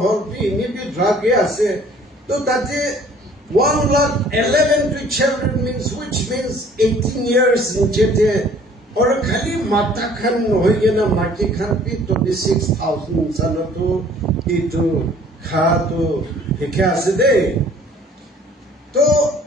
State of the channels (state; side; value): normal; both; correlation 0.54